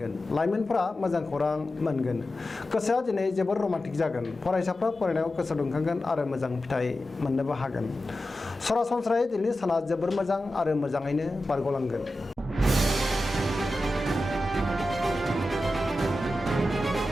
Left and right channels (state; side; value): normal; both; correlation 0.92